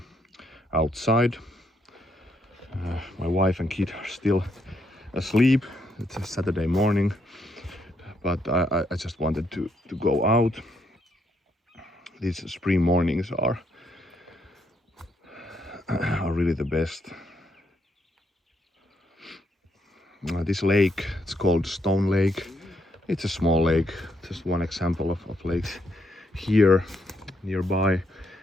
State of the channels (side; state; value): both; normal; correlation 0.75